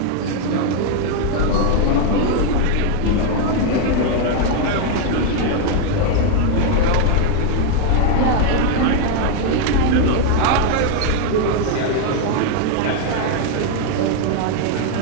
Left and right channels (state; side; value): different; both; correlation 0.01